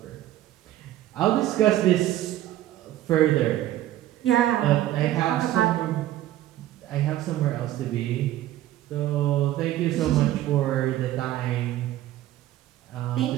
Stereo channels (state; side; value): quieter; left; 13.8 dB